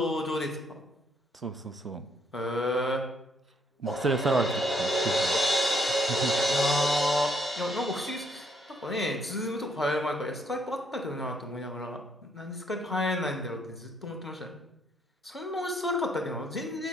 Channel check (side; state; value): both; normal; correlation 0.69